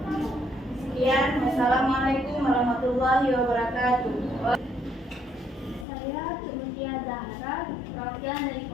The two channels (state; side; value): drops out; right; at 5.9 s